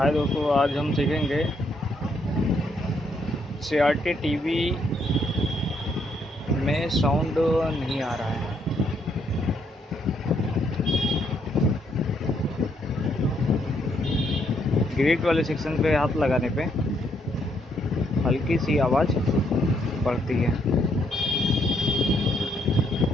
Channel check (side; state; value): both; normal; correlation 0.73